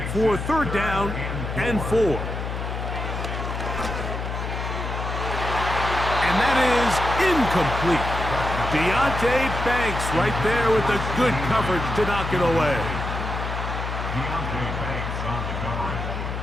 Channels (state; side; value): noise; left; hum, 4 dB below the sound